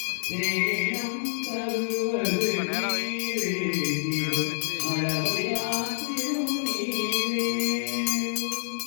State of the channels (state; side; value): silent; right; 60 dB below the other